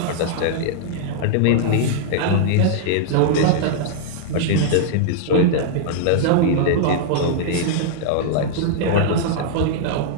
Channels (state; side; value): different; both; correlation -0.01